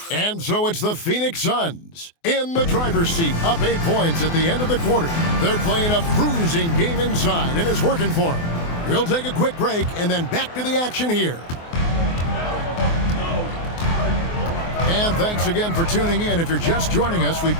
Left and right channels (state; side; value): late; right; 24 ms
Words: And so it's the Phoenix Suns in the driver's seat, up 8 points at the end of the quarter. They're playing a bruising game inside, and it's working for them. We'll take a quick break, and then back to the action here. And thanks again for tuning in. If you're just joining us, we've